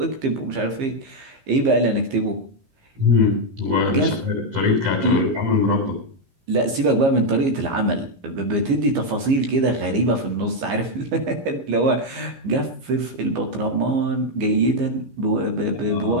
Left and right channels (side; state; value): left; late; 15 ms